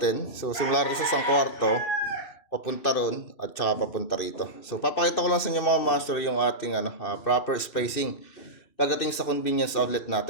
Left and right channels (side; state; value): right; late; 2.6 ms